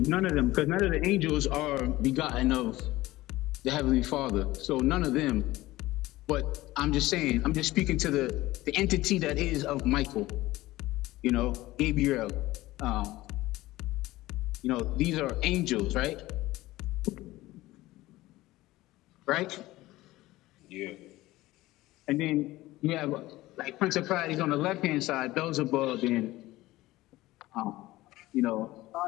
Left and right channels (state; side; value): quieter; right; 17.8 dB